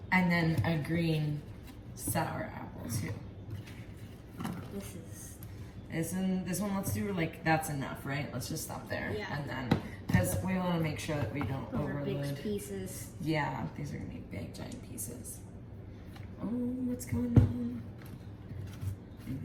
And then a green sour apple too. This This one, let's do like, that's enough, right? Let's just stop there. Yeah. And then, because we want to make sure that we don't those are overload. big pieces. Yeah, these are gonna be big, giant pieces. Oh, what's going on? You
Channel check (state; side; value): identical; both; correlation 1.00